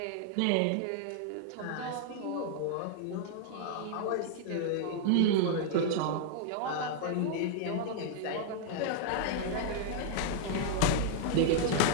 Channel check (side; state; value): both; different; correlation 0.00